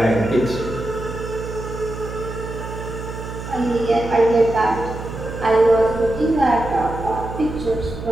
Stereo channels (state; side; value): noise; right; hum, 9 dB below the sound